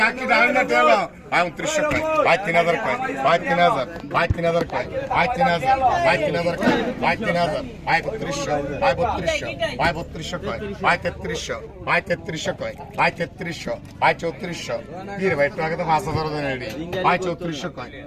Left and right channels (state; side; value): identical; both; correlation 1.00